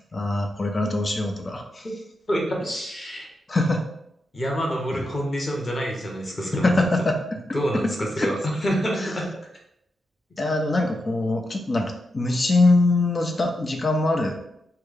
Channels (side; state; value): both; normal; correlation 0.86